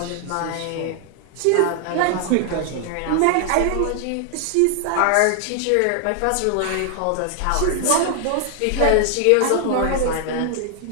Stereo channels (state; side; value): different; both; correlation 0.00